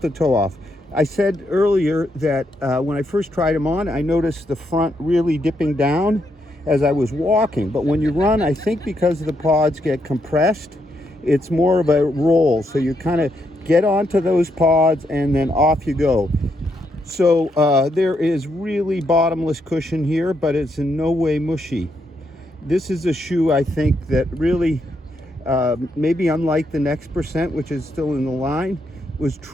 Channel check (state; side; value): normal; both; correlation 0.78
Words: toe off. I said earlier that when I first tried them on, I noticed the front really dipping down as I was walking. But when you run, I think because the pods get compressed, it's more of a roll. So you kind of get onto those pods and then off you go. So there is really bottomless cushion here, but it's in no way mushy. This is a shoe, I think, that really, maybe unlike the next percent, which is still in the line, was